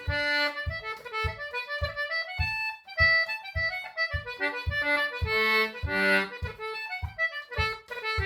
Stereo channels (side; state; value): both; identical; correlation 1.00